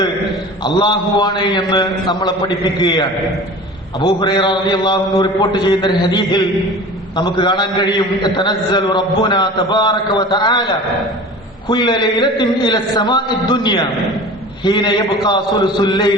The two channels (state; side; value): normal; both; correlation 0.38